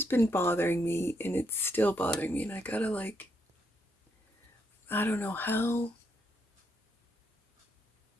been bothering me, and it's still bothering me, and I gotta I don't know how.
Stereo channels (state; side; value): normal; both; correlation 0.77